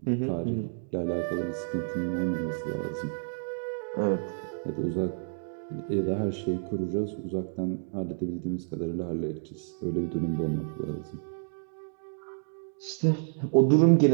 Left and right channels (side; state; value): left; silent; digital silence